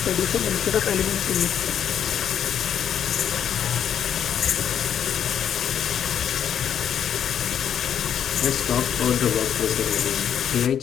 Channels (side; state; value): right; quieter; 9.0 dB